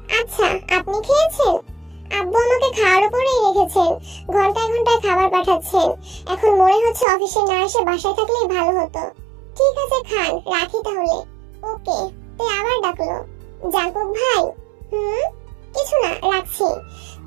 আচ্ছা, আপনি খেয়েছেন? আব্বু আমাকে খাওয়ার উপরেই রেখেছেন, ঘন্টায় ঘন্টায় খাবার পাঠাচ্ছেন। এখন মনে হচ্ছে অফিসে না এসে বাসায় থাকলেই ভালো হতো। ঠিক আছে খান, রাখি তাহলে। ওকে। তে আবার ডাকলো, জাঙ্কুক ভাই। কিছু না, রাখছি।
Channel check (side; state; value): left; drops out; at 7.1 s